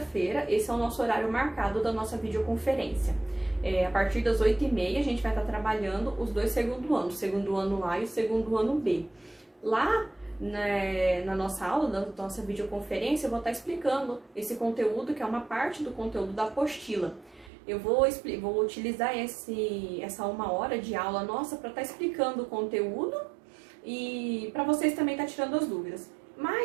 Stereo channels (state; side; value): drops out; left; at 17.5 s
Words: esse é o nosso horário marcado da nossa videoconferência. A partir das 8h30, a gente vai estar trabalhando os dois segundo anos, o segundo ano A e o segundo ano B. Lá, na nossa aula, da nossa videoconferência, eu vou estar explicando esse conteúdo, que é uma parte do conteúdo da apostila. Eu vou utilizar essa 1 hora de aula nossa para estar explicando o conteúdo e para vocês também estar tirando as dúvidas.